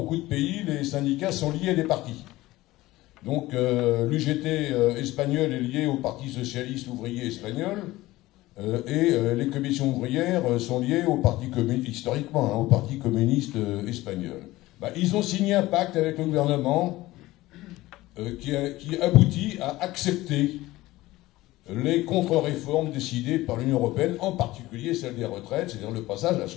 de pays, les syndicats sont liés à des partis. Donc l'UGT espagnol est lié au Parti socialiste ouvrier espagnol et les commissions ouvrières sont liées au Parti communiste, historiquement, hein, au Parti communiste espagnol. Ils ont signé un pacte avec le gouvernement qui aboutit à accepter les contre-réformes décidées par l'Union européenne, en particulier celle des retraites, c'est-à-dire le passage à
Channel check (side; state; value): right; quieter; 17.9 dB